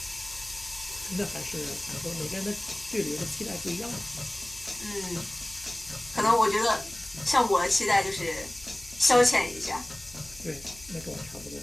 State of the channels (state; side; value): noise; left; hum, 20 dB below the sound